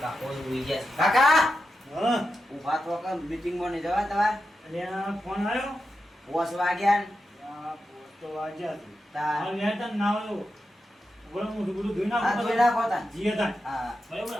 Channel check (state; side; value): normal; both; correlation 0.89